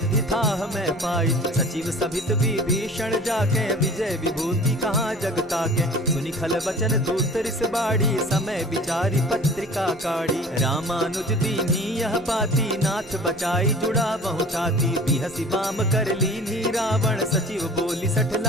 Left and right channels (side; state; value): both; normal; correlation 0.43